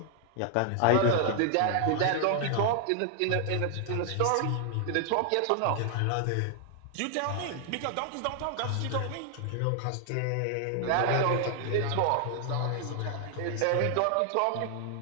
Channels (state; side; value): different; both; correlation 0.00